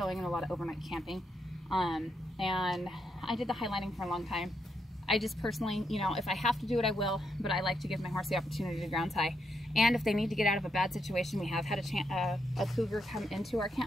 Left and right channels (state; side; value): normal; both; correlation 0.80